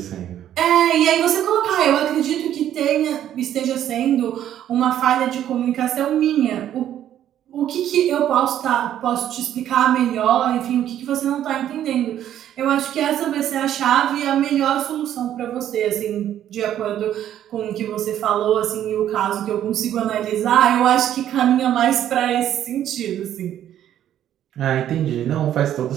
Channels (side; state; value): left; quieter; 11.1 dB